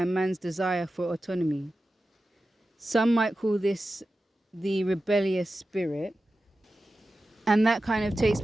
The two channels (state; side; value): normal; both; correlation 0.93